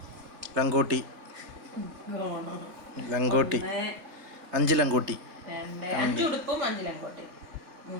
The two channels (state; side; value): late; left; 3.3 ms